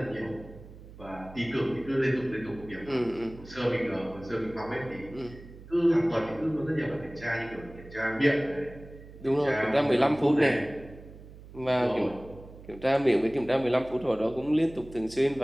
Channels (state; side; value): noise; right; hum, 18 dB below the sound